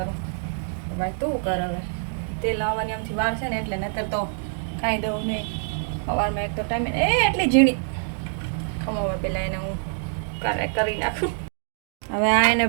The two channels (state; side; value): silent; left; 62 dB below the other